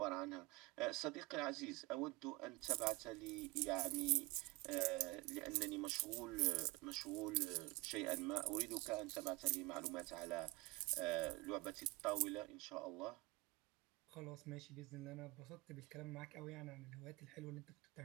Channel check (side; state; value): left; quieter; 23.9 dB